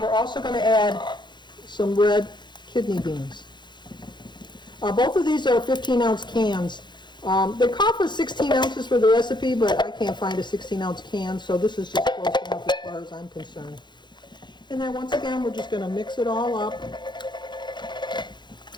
also going to add some red kidney beans. Both of these are 15-ounce cans. They call for 16 ounces for the recipe, but I can't find a 16-ounce can, so this is just close enough as far as I'm concerned. And then once again, we're just going to mix it all up.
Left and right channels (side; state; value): right; late; 0.22 ms